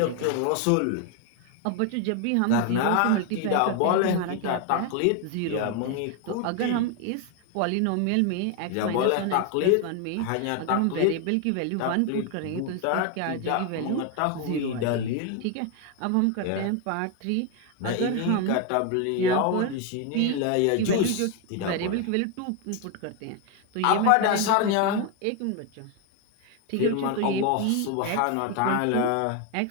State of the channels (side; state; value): both; different; correlation 0.01